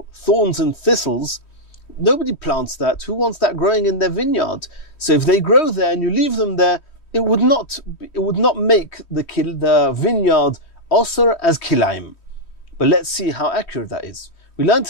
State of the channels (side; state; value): right; late; 3.1 ms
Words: thorns and thistles. Nobody plants that. Who wants that growing in their vineyard? So if they grow there and you leave them there, it would not make the vineyard osir as kilaim. But let's see how accurate that is. We learnt